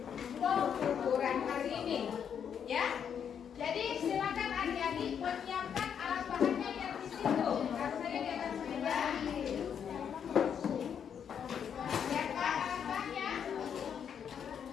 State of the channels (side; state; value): right; quieter; 8.0 dB